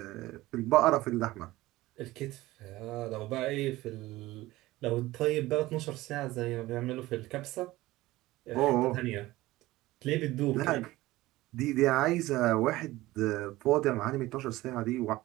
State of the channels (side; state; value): left; quieter; 18.0 dB